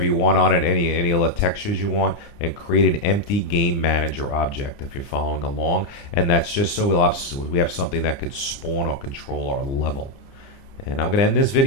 you want on it, any of the textures you want, and create an empty game manager object if you're following along. And that's just so we have something that could spawn or control our level. And I'm going to end this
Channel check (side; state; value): right; late; 29 ms